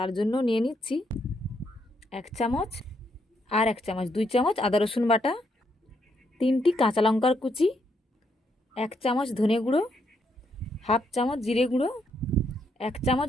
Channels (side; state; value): both; normal; correlation 0.76